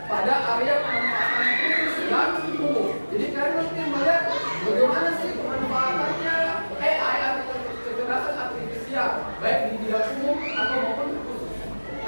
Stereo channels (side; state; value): both; inverted; correlation -1.00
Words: pada area pemanfaatan khusus dan umum. Jadi kalian mesti melihat bagaimana sih pemanfaatannya AI atau kecerdasan artifisial baik di bidang umum atau maupun khusus.